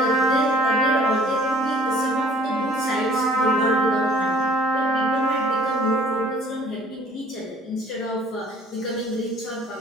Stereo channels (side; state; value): both; normal; correlation 0.55